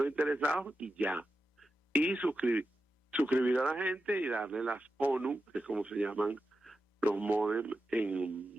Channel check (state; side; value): normal; both; correlation 0.90